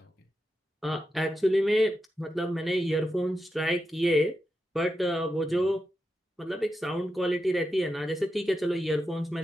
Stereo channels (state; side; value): normal; both; correlation 0.88